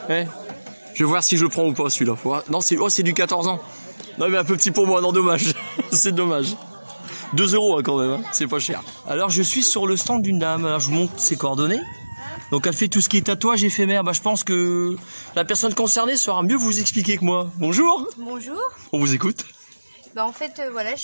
Ouais. Je vais voir si je le prends ou pas celui-là. Non, c'est du 14 ans. Non, mais un peu petit pour moi, non, dommage. C'est dommage. 2 € hein, quand même, hein. C'est pas cher. Alors, je suis sur le stand d'une dame. Alors, je vous montre ses coordonnées. Donc, elle fait tout ce qui est tatouage éphémère. Bah, je pense que la personne concernée saura mieux vous expliquer que moi. Bonjour. Bonjour. On vous écoute. Bah, en fait, voilà, je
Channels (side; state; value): both; inverted; correlation -1.00